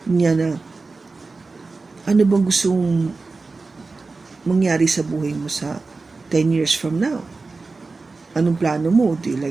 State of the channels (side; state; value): left; quieter; 3.9 dB